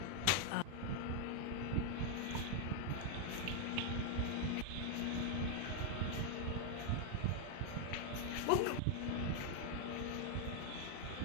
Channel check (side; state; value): both; different; correlation 0.00